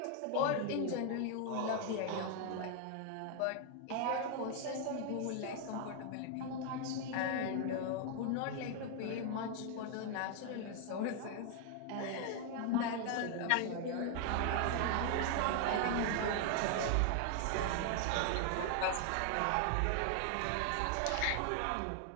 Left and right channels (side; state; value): both; different; correlation 0.00